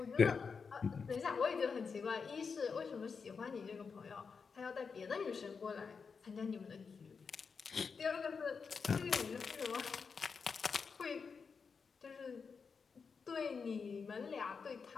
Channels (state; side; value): quieter; right; 5.5 dB